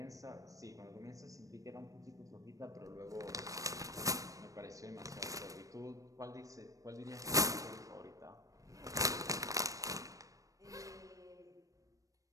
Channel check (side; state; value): left; late; 0.16 ms